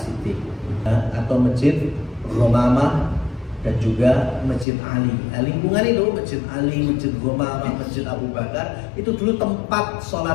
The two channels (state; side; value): drops out; right; at 4.7 s